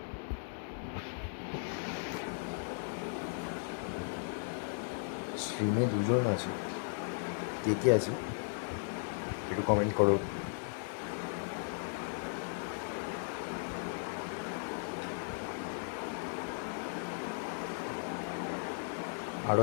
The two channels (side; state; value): right; silent; digital silence